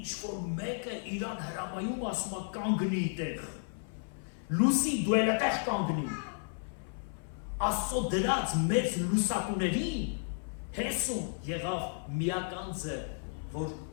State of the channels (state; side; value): silent; right; 56 dB below the other